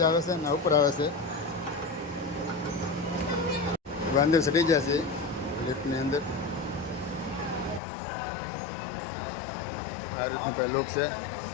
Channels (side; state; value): right; drops out; at 7.8 s